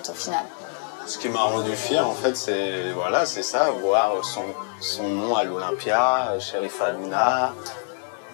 au final. Ce qui m'a rendu fier, en fait, c'est voilà, c'est ça, voir son nom à l'Olympia, Sherifa Aluna,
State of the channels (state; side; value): silent; right; digital silence